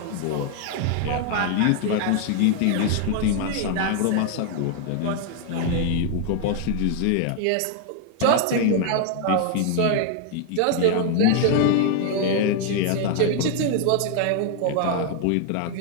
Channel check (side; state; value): both; different; correlation 0.00